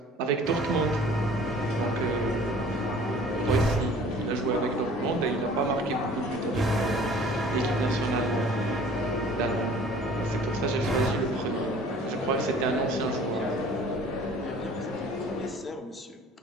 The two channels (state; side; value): normal; both; correlation 0.49